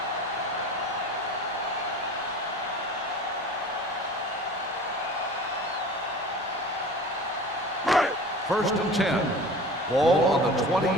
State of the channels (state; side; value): normal; both; correlation 0.39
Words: First and 10. Ball on the